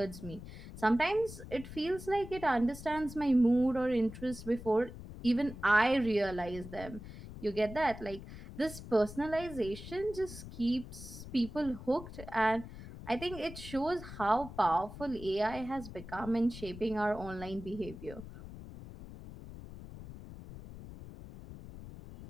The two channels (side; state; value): left; noise; rumble, 13 dB below the sound